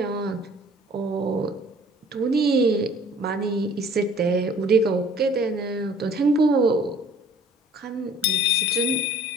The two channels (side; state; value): both; normal; correlation 0.52